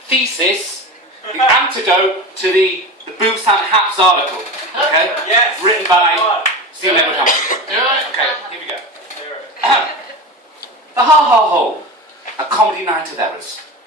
thesis, the antidote to the Busan Haps article. Okay? Yes. Written by Stephen Edward Hamster. Okay, here we go. The Ha-Ha Hole, a comedy night of errors,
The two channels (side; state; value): both; normal; correlation 0.27